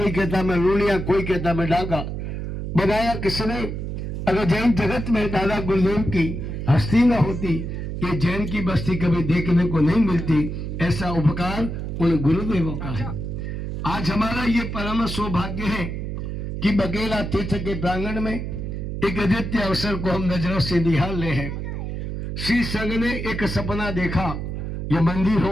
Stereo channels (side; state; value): right; noise; hum, 5 dB below the sound